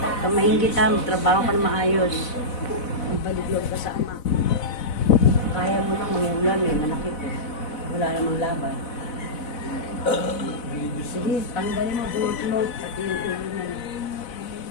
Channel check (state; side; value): late; right; 4.0 ms